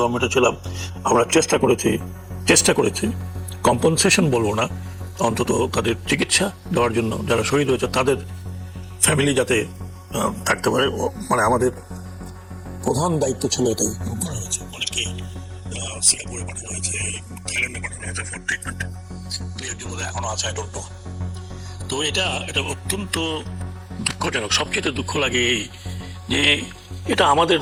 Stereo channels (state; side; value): identical; both; correlation 1.00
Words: ছিলাম আমরা চেষ্টা করেছি কম্পনসেশন বলবো না, অন্তত তাদের চিকিৎসা দেওয়ার জন্য যারা শহীদ হয়েছে তাদের ফ্যামিলি যাতে থাকতে পারে। মানে আমাদের প্রধান দায়িত্ব ছিল এটাই করা হয়েছে। অনেকে সিঙ্গাপুরে পাঠানো হয়েছে, থাইল্যান্ডে পাঠানো হয়েছে ফর ট্রিটমেন্ট, এখনো আছে, আই ডোন্ট নো। তো এটা অত্যন্ত দুঃখজনক। সবচেয়ে দুঃখ লাগে এই যে এটা আমাদের